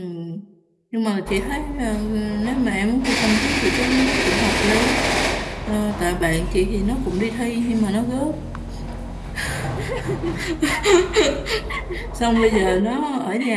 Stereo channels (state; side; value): identical; both; correlation 1.00